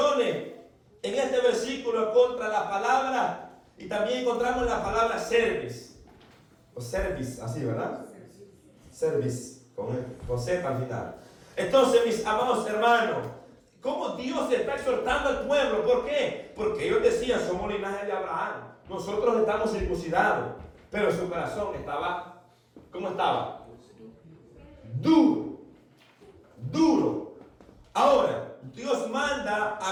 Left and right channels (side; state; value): both; identical; correlation 1.00